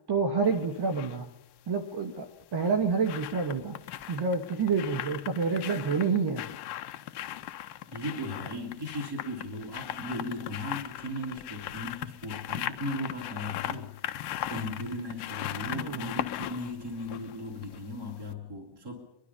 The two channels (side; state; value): left; late; 1.1 ms